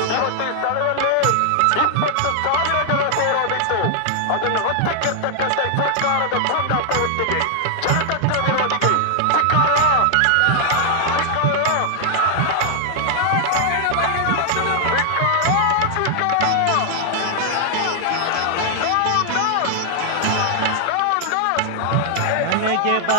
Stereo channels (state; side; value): different; both; correlation 0.00